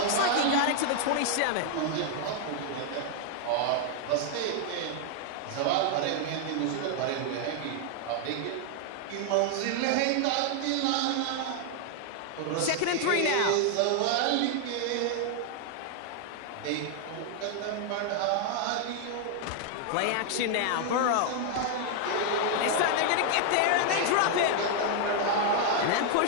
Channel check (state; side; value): different; both; correlation 0.00